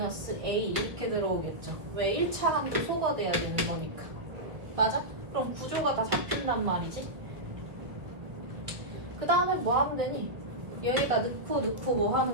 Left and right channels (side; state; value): left; late; 1.3 ms